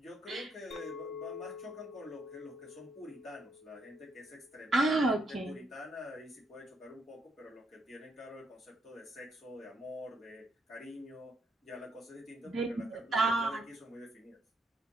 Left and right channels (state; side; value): normal; both; correlation 0.75